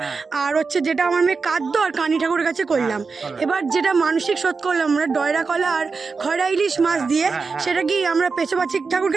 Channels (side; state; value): left; quieter; 4.7 dB